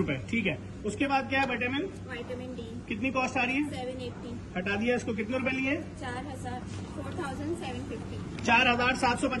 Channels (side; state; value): both; identical; correlation 1.00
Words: ठीक है। उसके बाद क्या है? Vitamin vitamin D. कितनी कॉस्ट आ रही है? 780। हटा दिया इसको। कितने रुपए लिए? 4750।